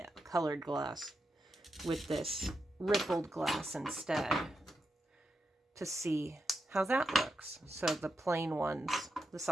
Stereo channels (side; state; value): both; normal; correlation 0.86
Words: colored glass, with this rippled glass instead, to see how that looks. So the plain ones, the